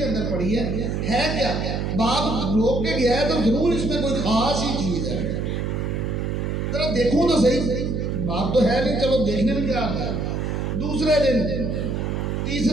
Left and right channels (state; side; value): noise; right; hum, 1 dB below the sound